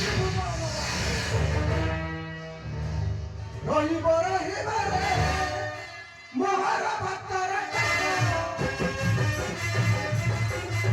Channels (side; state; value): both; identical; correlation 1.00